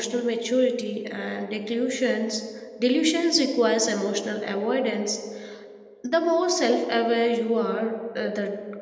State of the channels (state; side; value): identical; both; correlation 1.00